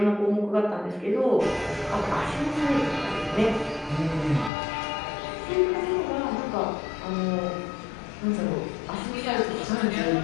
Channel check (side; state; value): right; drops out; at 4.5 s